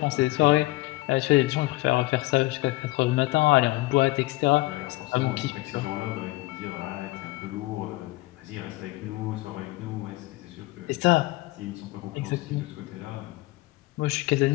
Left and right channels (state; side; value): quieter; right; 20.6 dB